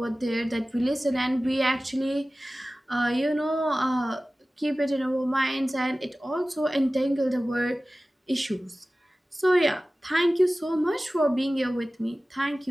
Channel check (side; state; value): both; normal; correlation 0.97